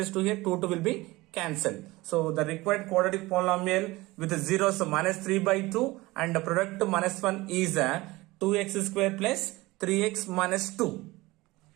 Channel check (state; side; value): quieter; left; 20.5 dB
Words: 2 here, 2 will be cancelled. So the required quadratic polynomial with the zeros, so minus 3 by 2 and the product minus 1 is 2x square plus 3x minus 2.